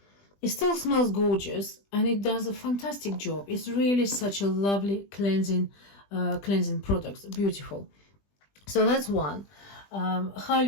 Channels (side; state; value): right; late; 20 ms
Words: still smells gorgeous, and it does a fantastic job. It's really such a lovely cleansing product. Beautiful. So that's one.